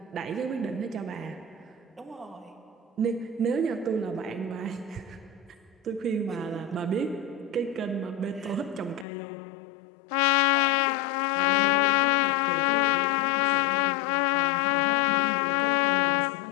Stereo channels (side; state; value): right; drops out; at 9.1 s